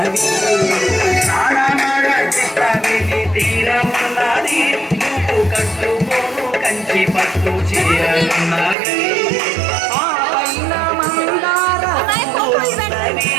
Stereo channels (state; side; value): drops out; left; at 8.8 s